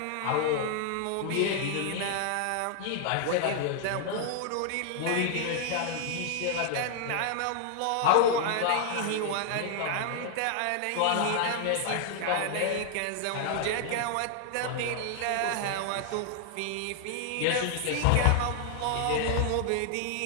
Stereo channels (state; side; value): different; both; correlation 0.00